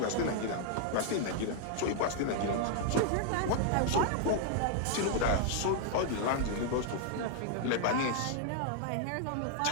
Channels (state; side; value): different; both; correlation 0.00